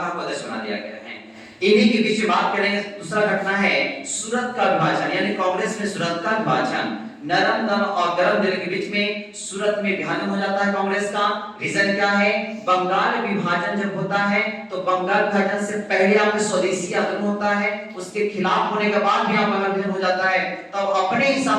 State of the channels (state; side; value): identical; both; correlation 1.00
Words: को अध्यक्ष बना दिया गया है। इन्हीं के बीच में बात करेंगे, दूसरा घटना है सूरत का विभाजन, यानी कांग्रेस में सूरत का विभाजन। नरम दल और गरम दिल के बीच में सूरत में विभाजन हो जाता है कांग्रेस का। रीजन क्या है? बंगाल विभाजन जब होता है तो बंगाल विभाजन से पहले आपके स्वदेशी आंदोलन होता है, उसके खिलाफ होने के बाद भी बंगाल विभाजन हो जाता है, तब अपने